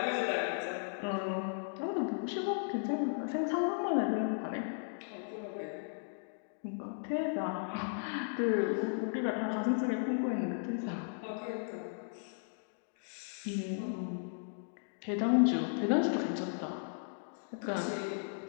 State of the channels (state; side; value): silent; right; digital silence